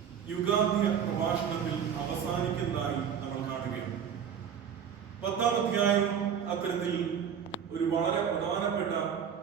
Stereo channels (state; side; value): quieter; left; 7.9 dB